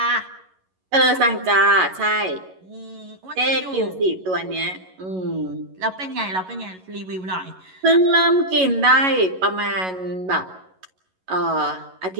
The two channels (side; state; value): left; late; 11 ms